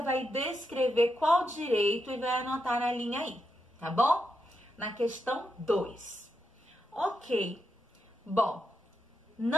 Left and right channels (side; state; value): both; normal; correlation 0.84